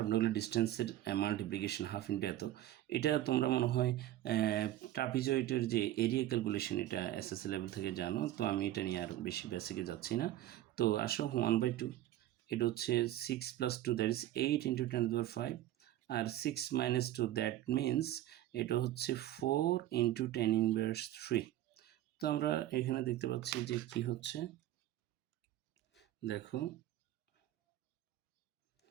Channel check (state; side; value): quieter; left; 13.7 dB